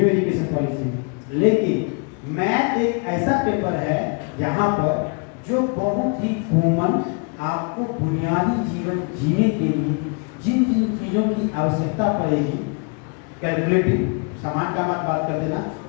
एजुकेशन पॉलिसी में? लेकिन मैथ एक ऐसा पेपर है यहाँ पर जो बहुत ही कॉमन आपको बुनियादी जीवन जीने के लिए जिन जिन चीज़ों की आवश्यकता पड़ेगी, कैलकुलेटिव सामान का मत बात कर देना,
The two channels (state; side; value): quieter; right; 35.1 dB